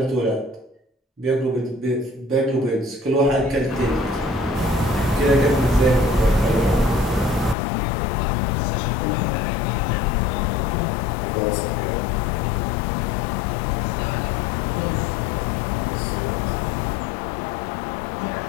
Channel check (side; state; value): right; drops out; at 7.6 s